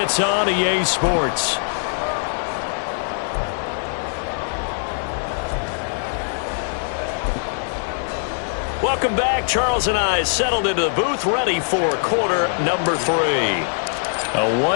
on EA Sports. Welcome back. Charles and I settled into the booth, ready for quarter number 3. A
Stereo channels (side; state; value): right; silent; 64 dB below the other